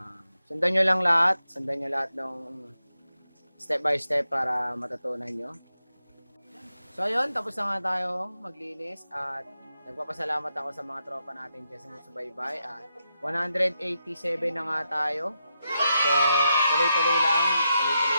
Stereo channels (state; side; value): inverted; both; correlation -0.85